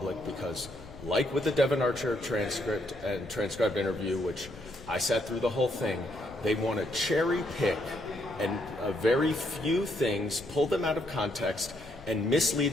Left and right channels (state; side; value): noise; left; rumble, 19 dB below the sound